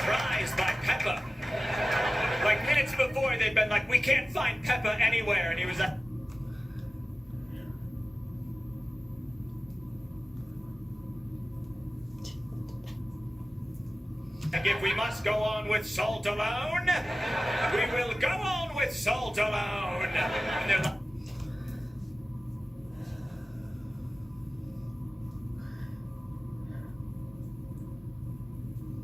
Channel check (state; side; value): normal; both; correlation 0.95